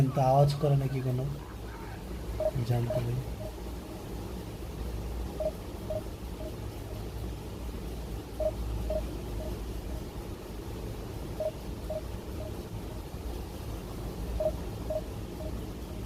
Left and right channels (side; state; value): both; identical; correlation 1.00